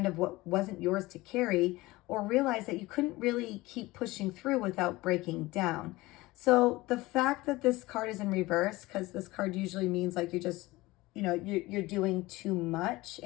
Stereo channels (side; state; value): right; quieter; 20.0 dB